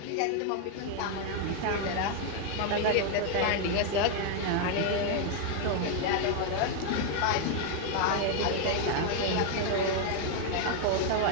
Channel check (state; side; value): different; both; correlation 0.01